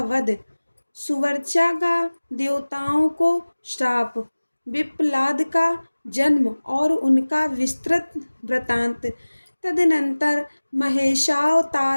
वध। सुवर्चा का देवताओं को श्राप। विप्लाद का जन्म और उनका विस्तृत वृत्तांत। तदनंतर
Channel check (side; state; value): both; inverted; correlation -1.00